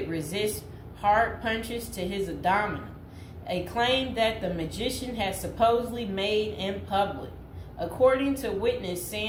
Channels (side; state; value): both; identical; correlation 1.00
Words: resist hard punches to his abdomen, a claim that the magician had supposedly made in public. According to witness